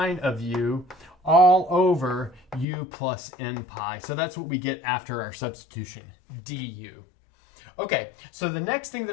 of u all over u plus n pi. So that's what we get after our substitution, du. Okay, so the next thing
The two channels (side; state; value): right; drops out; at 2.7 s